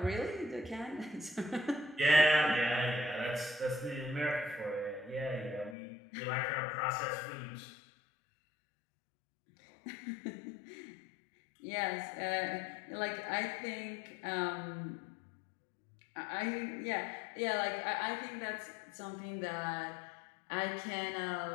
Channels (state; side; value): drops out; right; at 5.8 s